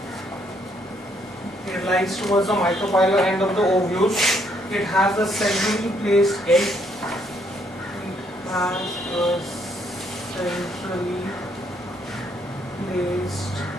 It lies towards the micropylar end of the ovule. It has a centrally placed egg. It has a centrally placed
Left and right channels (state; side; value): normal; both; correlation 0.70